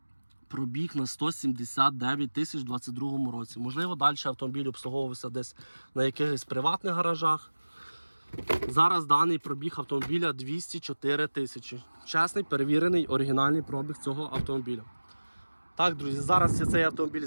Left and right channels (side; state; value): both; inverted; correlation -1.00